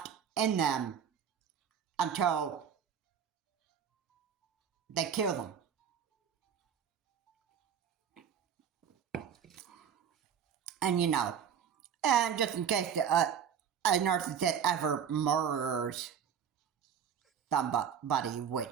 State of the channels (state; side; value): quieter; left; 8.0 dB